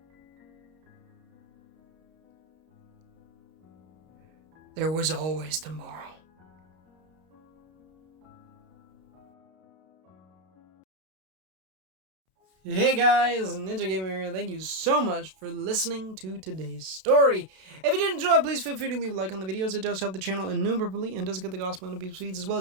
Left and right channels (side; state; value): left; late; 32 ms